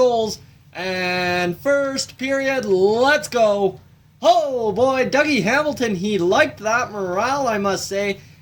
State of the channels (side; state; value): both; identical; correlation 1.00